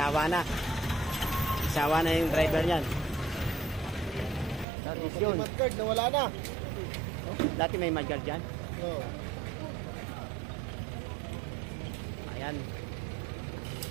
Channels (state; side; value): drops out; left; at 4.7 s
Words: Sawa na yung driver niyan. Dati yun. Nawala na. Dati may mudguard dyan. Oo. Ayan.